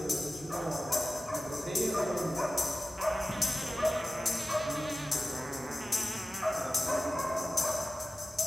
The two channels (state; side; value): normal; both; correlation 0.96